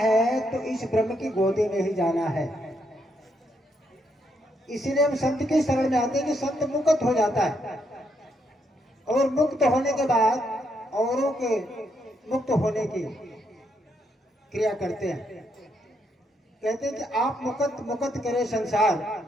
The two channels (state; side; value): normal; both; correlation 0.77